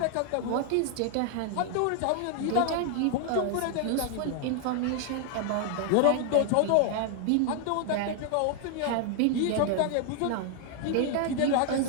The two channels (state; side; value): different; both; correlation 0.00